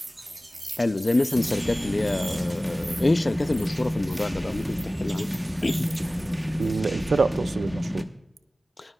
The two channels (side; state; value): both; normal; correlation 0.97